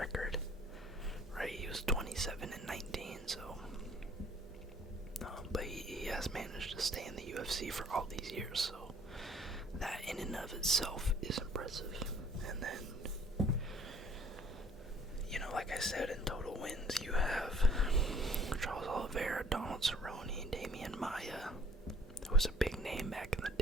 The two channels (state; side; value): normal; both; correlation 0.57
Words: right? He was 27-19, so. But he has managed to stay in the UFC for all these years, so that in and of itself is impressive. And then, like I said, in total wins, you have Charles Oliveira, Donald Cerrone, Damian Maia, who was a big name back in